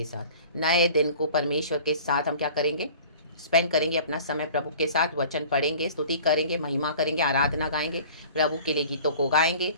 साथ। नए दिन को परमेश्वर के साथ हम क्या करेंगे? स्पेंड करेंगे अपना समय प्रभु के साथ। वचन पढ़ेंगे, स्तुति करेंगे, महिमा करेंगे, आराधना गाएंगे, प्रभु के लिए गीतों को गाएंगे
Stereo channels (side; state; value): both; inverted; correlation -0.45